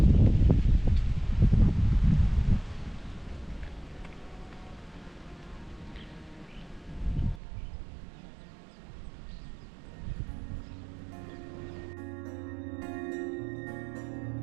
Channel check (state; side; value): drops out; left; at 7.4 s